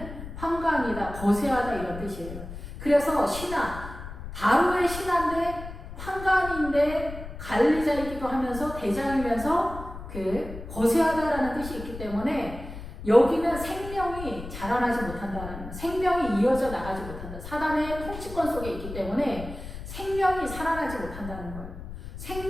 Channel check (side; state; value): left; noise; rumble, 11 dB below the sound